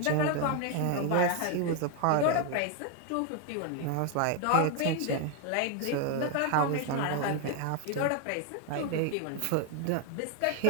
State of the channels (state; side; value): different; both; correlation 0.01